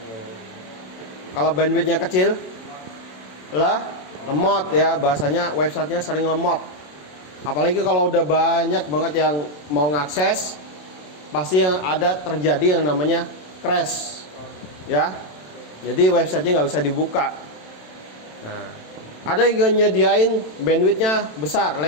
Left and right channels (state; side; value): late; right; 27 ms